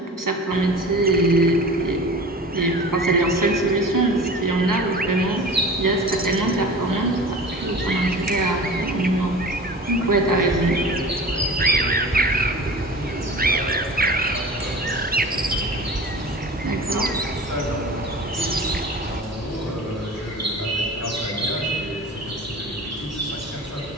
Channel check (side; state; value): both; normal; correlation 0.38